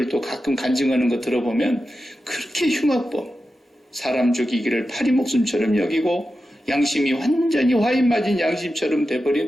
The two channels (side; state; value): both; normal; correlation 0.91